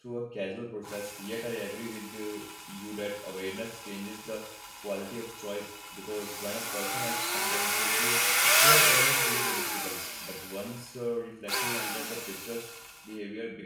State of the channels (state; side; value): identical; both; correlation 1.00